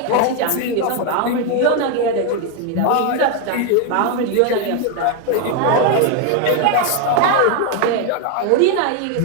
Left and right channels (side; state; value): both; different; correlation 0.01